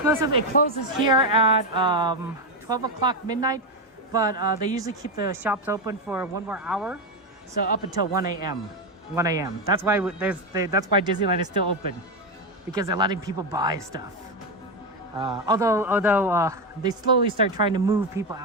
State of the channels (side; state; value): both; normal; correlation 0.09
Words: it closes here at 12 o'clock midnight, but they usually keep the shops open for 1 more hour, so up until 1 a.m. 1 a.m. That's why that's why Disneyland is still open, because they're letting people buy stuff. Although they slowly start trying to move people